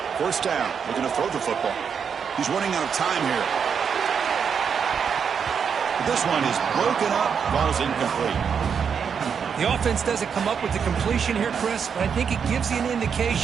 First down, looking to throw the football. He's running out of time here. This one is broken up, ball's incomplete. The offense doesn't come up with the completion here, Chris, but I think it gives you an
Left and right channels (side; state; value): left; quieter; 6.8 dB